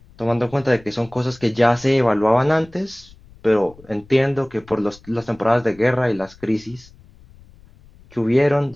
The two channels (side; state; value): left; noise; rumble, 25 dB below the sound